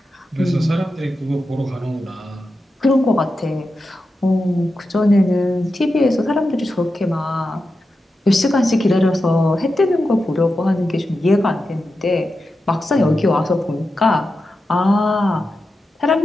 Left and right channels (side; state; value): both; normal; correlation 0.90